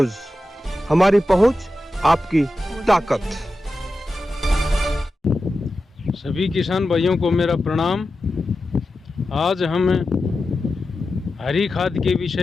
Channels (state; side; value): normal; both; correlation 0.92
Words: हमारी पहुंच आपकी ताकत। सभी किसान भाइयों को मेरा प्रणाम। आज हम हरी खाद के